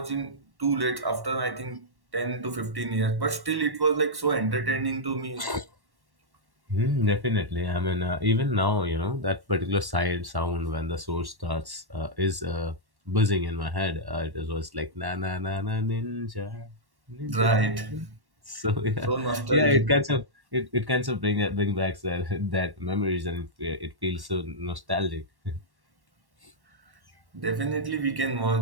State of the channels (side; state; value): left; late; 1.1 ms